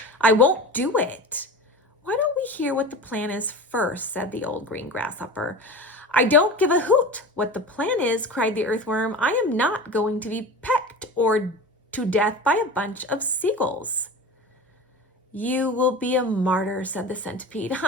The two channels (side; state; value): both; normal; correlation 0.32